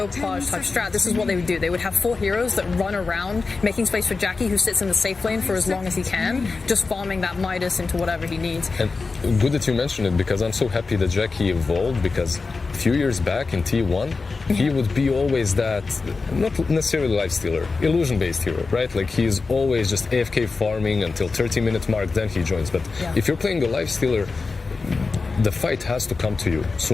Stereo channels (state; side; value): quieter; right; 4.2 dB